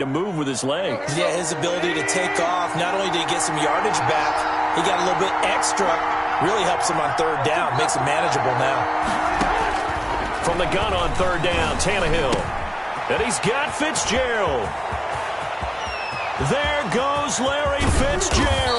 move with his legs. Yeah, his ability to take off, not only did he get some yardage back, he got a little bit extra. Really helps him on third down, makes it manageable now. From the gun on third down, Tannehill. And he's got Fitzgerald. There goes Larry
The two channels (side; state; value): both; identical; correlation 1.00